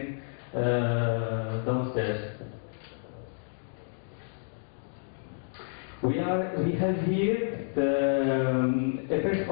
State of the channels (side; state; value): right; silent; digital silence